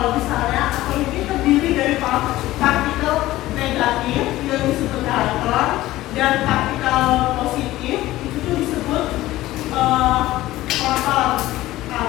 misalnya atom ini terdiri dari partikel negatif yang disebut elektron dan partikel positif itu tuh disebut proton,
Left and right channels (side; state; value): right; quieter; 16.4 dB